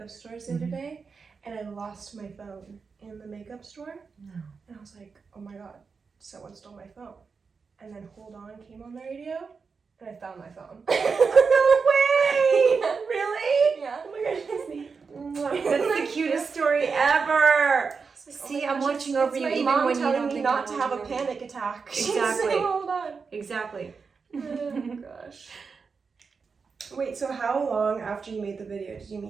stores the other day, and I lost my phone in the makeup store. No. And I was like, oh my god, someone stole my phone. And then Hold On came on the radio, and I found my phone. No way! Yeah. Really? Yeah. Oh my gosh, that's me. That's the cutest story ever. Like, See, oh my I'm gosh, watching over you my even mom when you telling don't me think not I'm to have a watching over you. panic attack. Exactly. So, hold on. Exactly. Oh gosh. Wait, so how long after you made the video did you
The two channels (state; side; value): quieter; left; 5.2 dB